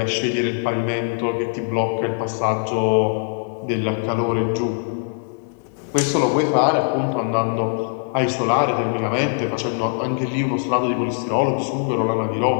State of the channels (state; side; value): silent; right; 65 dB below the other